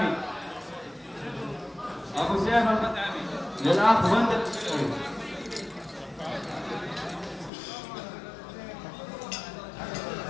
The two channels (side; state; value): right; drops out; at 7.5 s